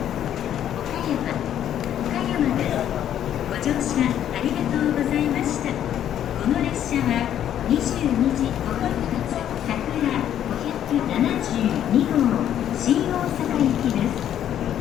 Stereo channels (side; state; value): right; quieter; 10.5 dB